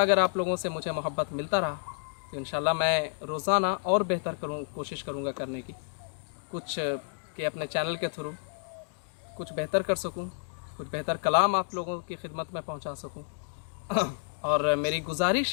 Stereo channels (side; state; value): right; silent; digital silence